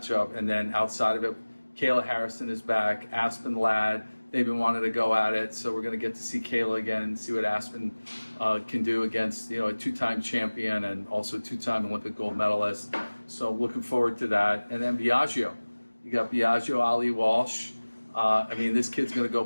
And then outside of it, Kayla Harrison is back, Aspen Ladd. They've been wanting to go at it, so we're going to get to see Kayla again and see what Aspen can do against, a two-time champion and also two-time Olympic gold medalist. So looking forward to that. And then Biagio. You got Biagio Ali Walsh. I mean, this kid's going to go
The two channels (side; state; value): both; inverted; correlation -1.00